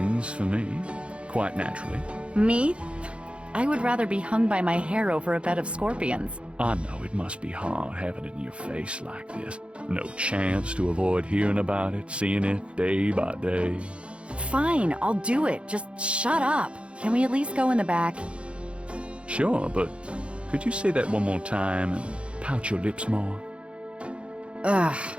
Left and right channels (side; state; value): left; late; 0.059 ms